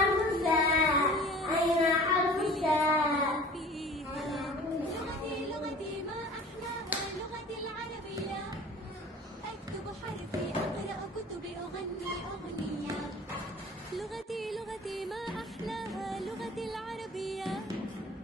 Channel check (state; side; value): normal; both; correlation 0.44